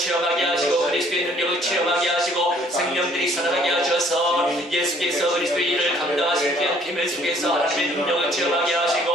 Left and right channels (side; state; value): both; normal; correlation 0.60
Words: 하시고 그리스도의 능력을 체험하게 하시고 생명들이 살아나게 하셔서 예수께서 그리스도의 일을 감당하신 귀한 비밀 속에서 하나님의 능력을 체험하게 하시고